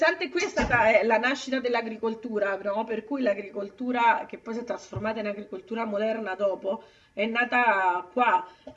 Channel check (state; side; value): identical; both; correlation 1.00